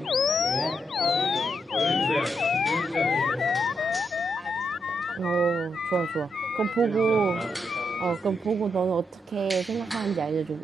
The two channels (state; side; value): normal; both; correlation 0.81